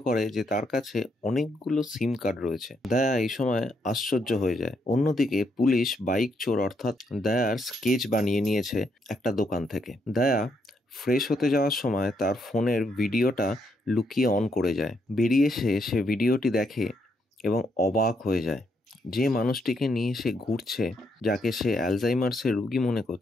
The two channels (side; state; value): both; normal; correlation 0.76